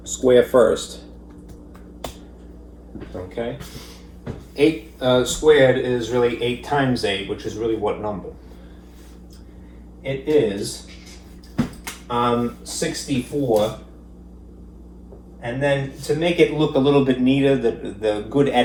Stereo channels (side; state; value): both; identical; correlation 1.00